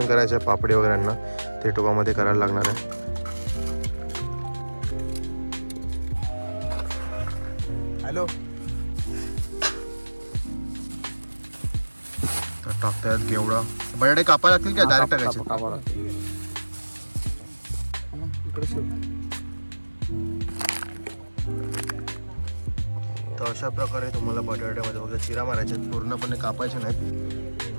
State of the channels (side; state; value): both; inverted; correlation -1.00